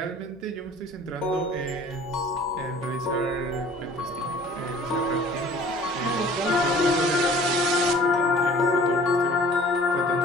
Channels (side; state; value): right; noise; hum, 28 dB below the sound